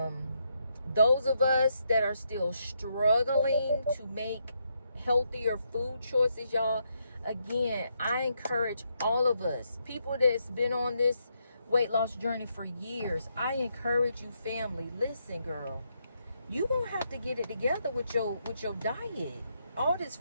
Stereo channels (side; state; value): both; inverted; correlation -0.79